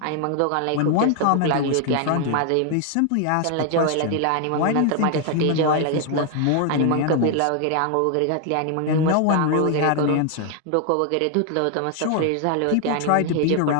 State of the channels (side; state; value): both; different; correlation 0.00